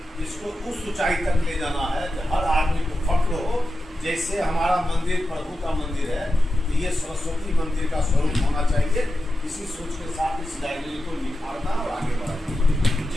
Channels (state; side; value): normal; both; correlation 0.91